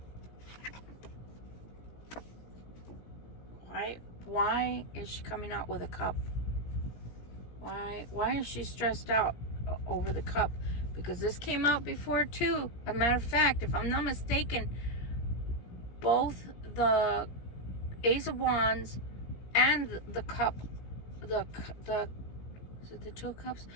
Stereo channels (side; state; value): right; late; 17 ms